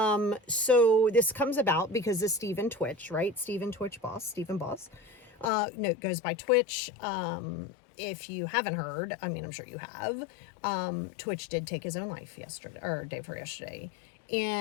so this comes about because of Stephen Twitch, right? Stephen Boss. No, it goes by Twitch. If you haven't heard, I mean, I'm sure you have, Twitch did take his own life yesterday, or day before yesterday.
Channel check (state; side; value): drops out; right; at 5.5 s